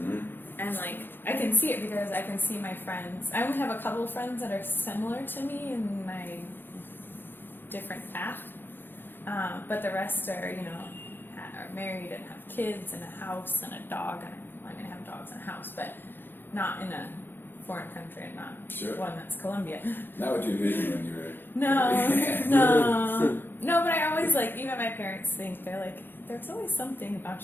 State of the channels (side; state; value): right; late; 0.099 ms